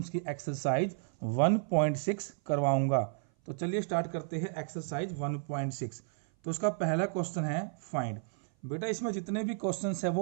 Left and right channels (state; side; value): silent; left; 56 dB below the other